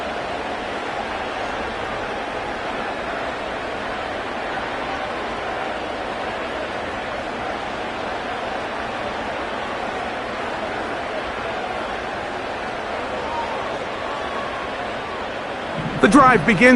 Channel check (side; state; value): both; identical; correlation 1.00